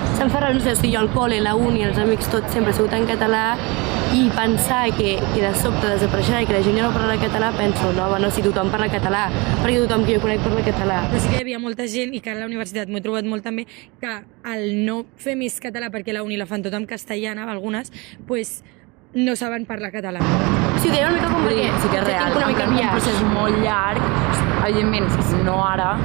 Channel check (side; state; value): left; quieter; 26.6 dB